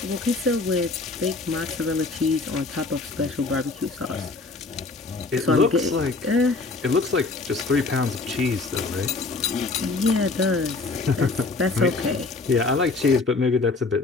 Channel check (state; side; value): quieter; right; 3.7 dB